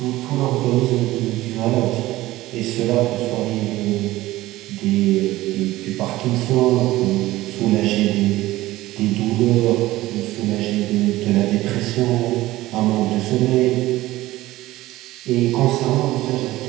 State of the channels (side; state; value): left; quieter; 17.2 dB